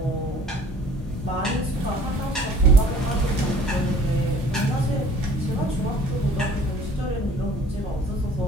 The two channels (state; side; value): normal; both; correlation 0.52